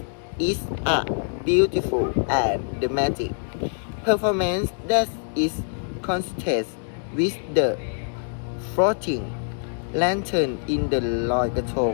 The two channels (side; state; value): right; silent; 62 dB below the other